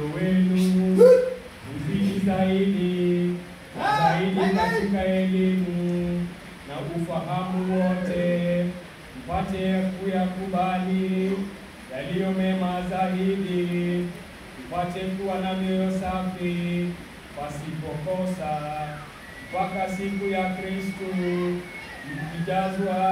wenu uzidi zaidi katika elimu na ufahamu wote, mpate kuyakubali yaliyo mema zaidi, mpate kuwa na mioyo safi pasipokosa, mpaka siku ya Kristo, mkijazwa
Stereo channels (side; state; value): both; identical; correlation 1.00